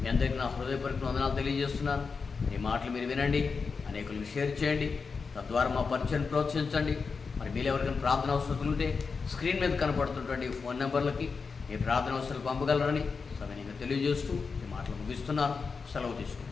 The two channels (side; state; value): right; quieter; 5.0 dB